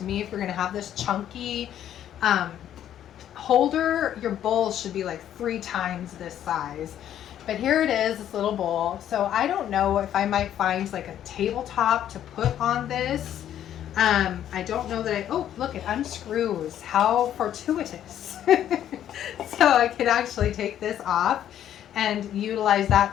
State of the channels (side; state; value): right; quieter; 10.8 dB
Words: me, if you're going to have this chunky holder, your bowl should be like 3 times this size. But here it is, this little bowl. So I don't know if I might find like a tabletop to put on this. I don't know that oh, look, it unscrews. How fortuitous. So I could actually take this off and utilize that